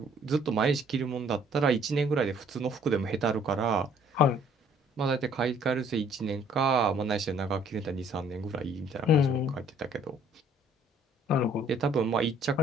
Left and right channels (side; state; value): both; normal; correlation 0.60